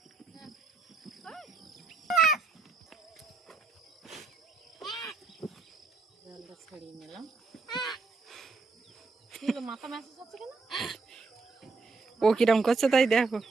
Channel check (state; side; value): quieter; left; 4.2 dB